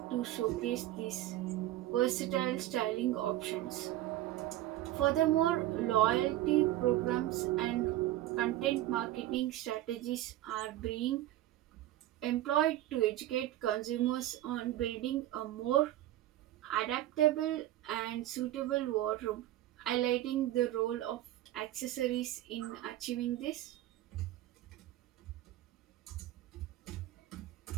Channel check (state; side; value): quieter; left; 14.4 dB